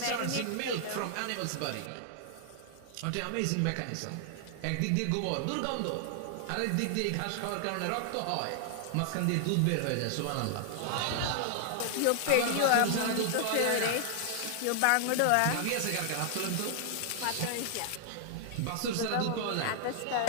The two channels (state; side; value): different; both; correlation 0.00